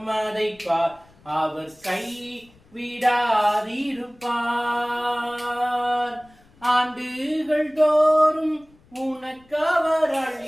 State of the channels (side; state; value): left; noise; rumble, 29 dB below the sound